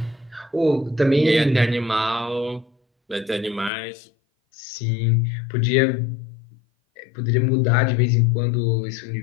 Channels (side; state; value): right; drops out; at 3.7 s